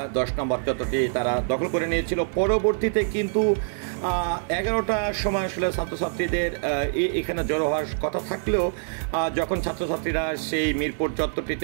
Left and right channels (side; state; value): left; silent; 62 dB below the other